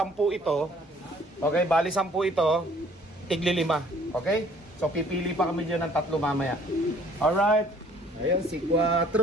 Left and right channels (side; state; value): both; normal; correlation 0.57